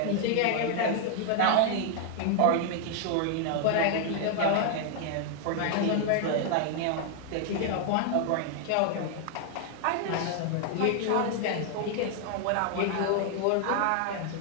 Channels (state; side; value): different; both; correlation 0.00